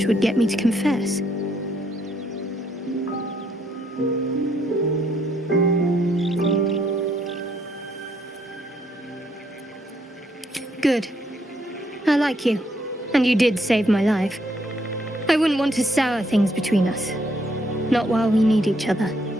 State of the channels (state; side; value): normal; both; correlation 0.72